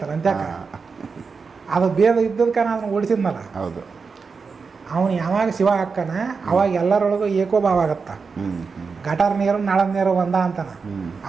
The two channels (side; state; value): left; quieter; 5.0 dB